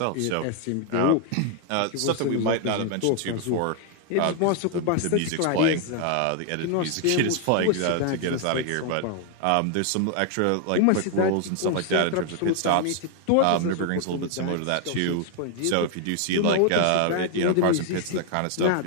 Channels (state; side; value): different; both; correlation 0.00